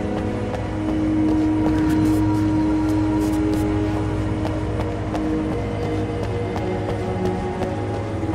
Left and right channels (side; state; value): both; identical; correlation 1.00